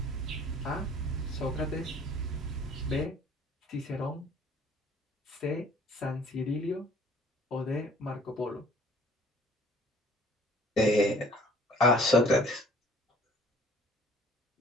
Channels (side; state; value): both; normal; correlation 0.55